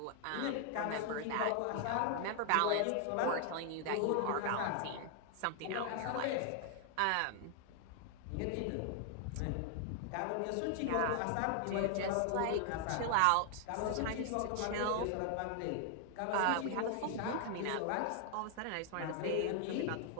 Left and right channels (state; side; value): different; both; correlation 0.00